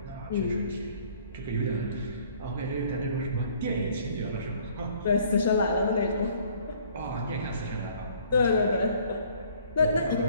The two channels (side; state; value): both; inverted; correlation -0.57